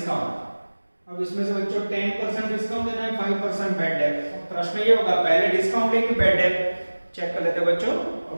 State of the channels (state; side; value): inverted; both; correlation -1.00